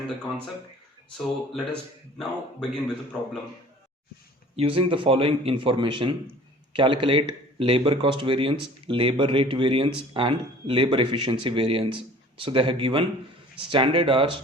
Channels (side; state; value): both; normal; correlation 0.48